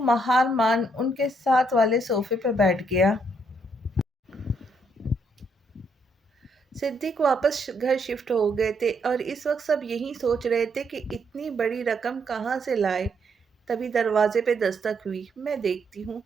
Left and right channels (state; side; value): normal; both; correlation 0.74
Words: مہار مان ان کے ساتھ والے صوفے پہ بیٹھ گیا۔ صدیق واپس گھر شفٹ ہو گئے تھے اور اس وقت سب یہی سوچ رہے تھے کہ اتنی بڑی رقم کہاں سے لائے۔ تبھی دروازے پہ دستک ہوئی۔ میں دیکھتی ہوں۔